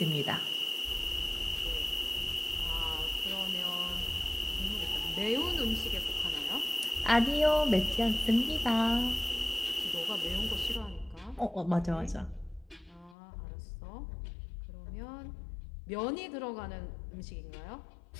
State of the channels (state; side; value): drops out; right; at 13.2 s